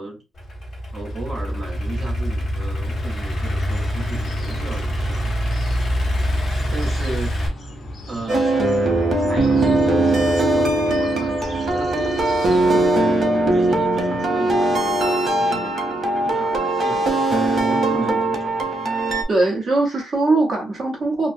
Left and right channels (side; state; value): both; normal; correlation 0.81